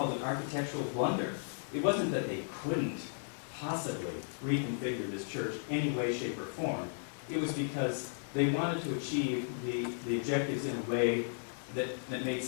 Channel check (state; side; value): silent; right; digital silence